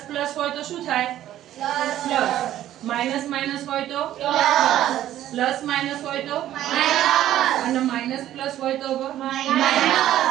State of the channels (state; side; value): quieter; left; 12.7 dB